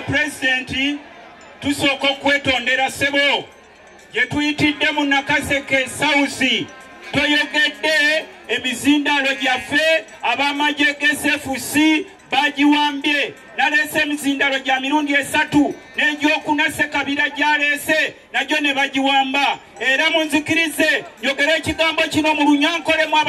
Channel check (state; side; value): identical; both; correlation 1.00